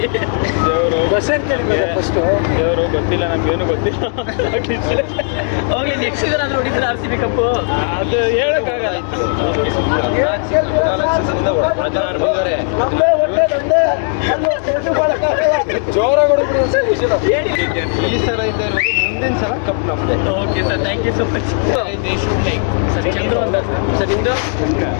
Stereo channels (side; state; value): right; silent; 59 dB below the other